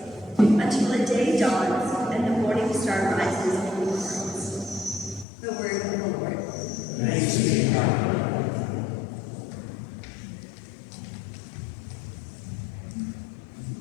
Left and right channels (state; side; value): drops out; right; at 5.2 s